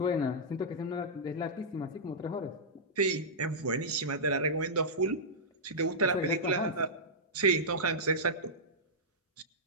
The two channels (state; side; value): normal; both; correlation -0.12